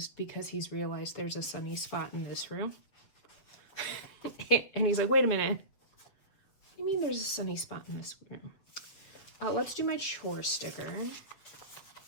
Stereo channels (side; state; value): right; late; 7.5 ms